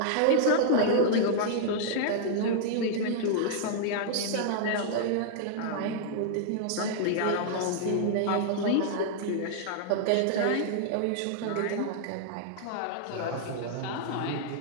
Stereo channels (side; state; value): both; different; correlation -0.01